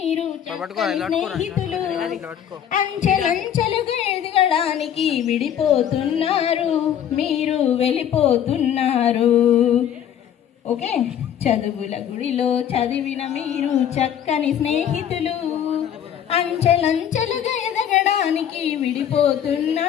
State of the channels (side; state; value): right; quieter; 9.6 dB